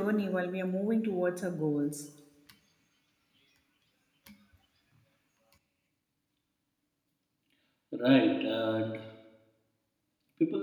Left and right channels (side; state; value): both; identical; correlation 1.00